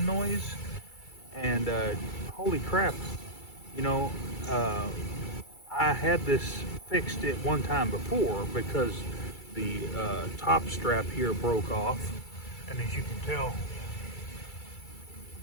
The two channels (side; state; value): right; late; 2.3 ms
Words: noise, and holy crap, you know, I had this fixed at one time before because the top strap here broke off, and as you can tell,